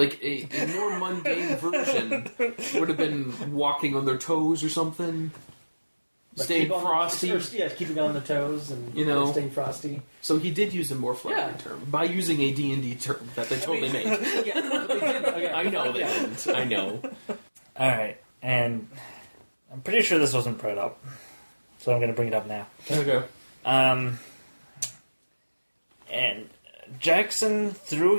a more mundane version would have been walking on their toes or something. Like staying frosty. Keeping on the toes and staying frosty. So he did use a more flowery term by using a D&D term that they totally made. Yeah, they did. Okay. I know they didn't. I know. Alright, and I'm pretty sure this wasn't brought up, so I'm going to bring it up now. Okay. And Jackson threw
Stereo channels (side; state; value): both; inverted; correlation -1.00